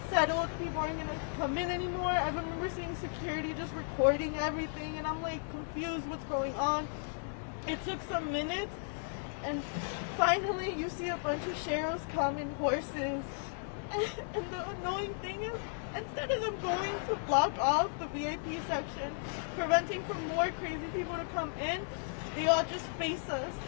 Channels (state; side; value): silent; right; digital silence